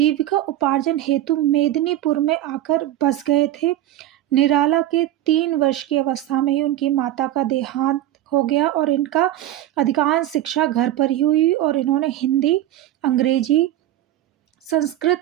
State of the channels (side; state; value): left; quieter; 13.3 dB